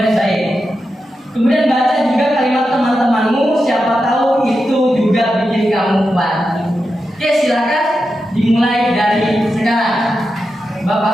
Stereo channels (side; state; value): both; normal; correlation 0.89